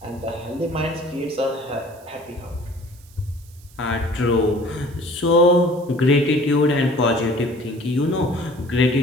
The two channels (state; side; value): noise; right; hiss, 26 dB below the sound